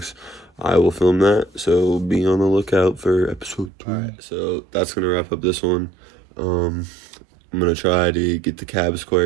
I will film that, so be on the lookout for episode 3. Alright, so that's gonna wrap up this one. I'm gonna try to get the cab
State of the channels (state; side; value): drops out; left; at 3.7 s